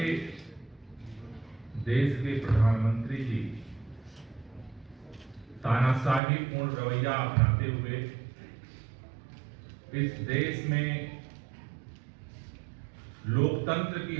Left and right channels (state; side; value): drops out; left; at 6.2 s